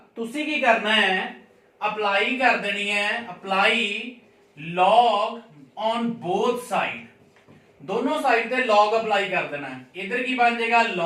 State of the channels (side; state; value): both; identical; correlation 1.00